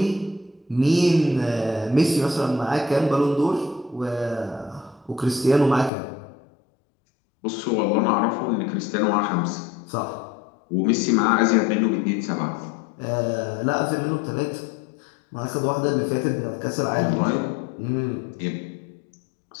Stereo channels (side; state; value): right; drops out; at 5.9 s